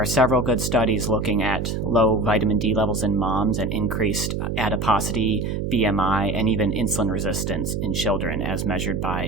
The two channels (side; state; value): right; noise; hum, 2 dB below the sound